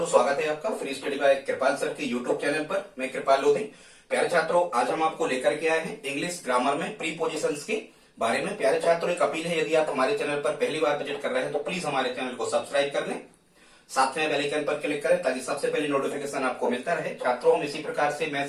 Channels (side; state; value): both; identical; correlation 1.00